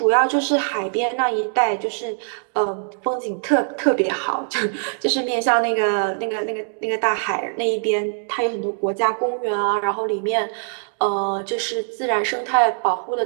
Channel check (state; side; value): silent; left; digital silence